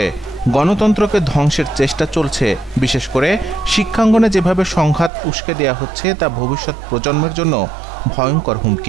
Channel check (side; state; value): left; drops out; at 5.1 s